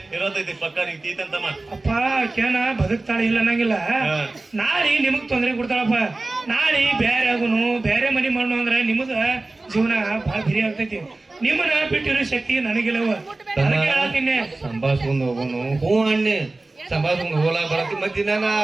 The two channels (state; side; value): quieter; left; 3.1 dB